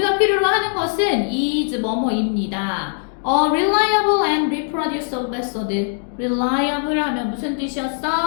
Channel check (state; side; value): silent; right; 66 dB below the other